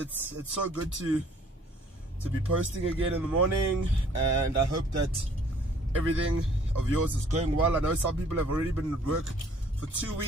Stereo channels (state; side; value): normal; both; correlation 0.58